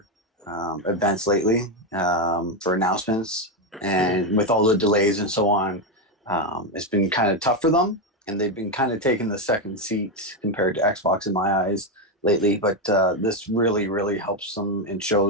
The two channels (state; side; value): normal; both; correlation 0.08